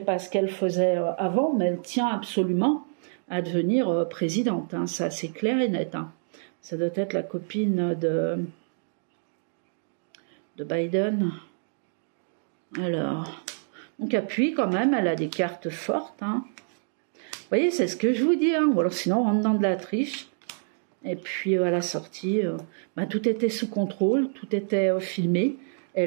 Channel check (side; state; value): left; silent; digital silence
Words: pas ce qu'elle faisait avant, mais elle tient absolument à devenir présidente, hein. Ça, c'est clair et net, hein. Ça doit être la copine de Biden. Alors, donc appuie quand même, elle a des cartes fortes, hein. Vous voyez, c'est ce que je vous dis, hein. Ou alors sinon, on rentre dans de la triche. Et puis à la sortie, bah, tout était sous contrôle, tout était filmé. Et